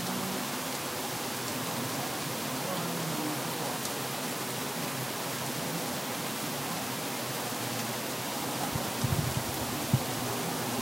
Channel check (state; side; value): normal; both; correlation 0.98